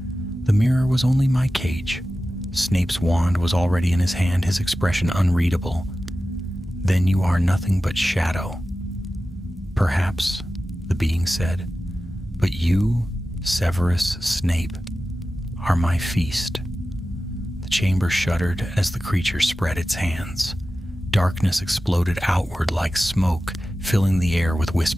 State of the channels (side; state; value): both; normal; correlation 0.94